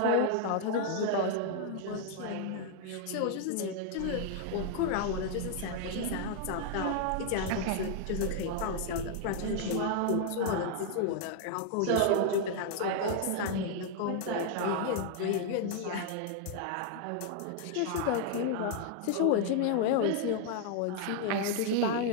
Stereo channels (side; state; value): both; different; correlation 0.00